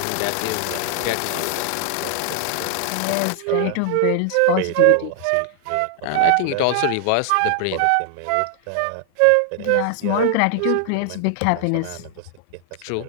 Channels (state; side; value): different; both; correlation 0.00